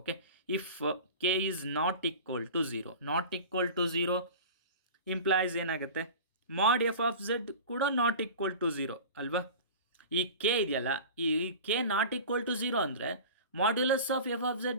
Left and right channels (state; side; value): inverted; both; correlation -0.35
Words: if k is not equal to 0 implies ಏನಾಗುತ್ತೆ, ಮಾಡ್ ಎಫ್ ಆಫ್ ಝೆಡ್ ಕೂಡ ನಾಟ್ ಈಕ್ವಲ್ ಟು 0 ಅಲ್ವಾ. ಈ ಕೆ ಇದೆಯಲ್ಲ, ಈ ಕೆ ನಾಟ್ ಈಕ್ವಲ್ ಟು 0 ಅಂದರೆ modulus of f of